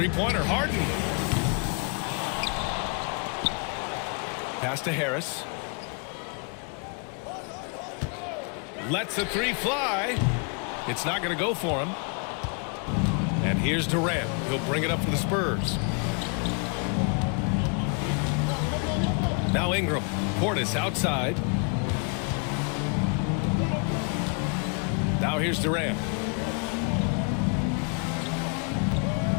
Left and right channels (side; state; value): right; quieter; 37.5 dB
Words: Harden. Pass to Harris. Lets the 3 fly. It's not going to go for him. And here's Durant. He'll bring it up for the Spurs. Now Ingram. Portis outside. Now here's Durant.